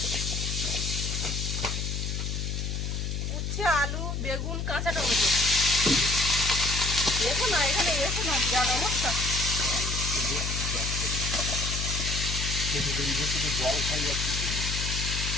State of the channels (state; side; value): noise; left; hum, 2 dB below the sound